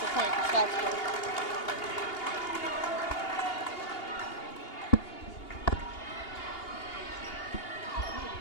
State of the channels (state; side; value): late; right; 2.8 ms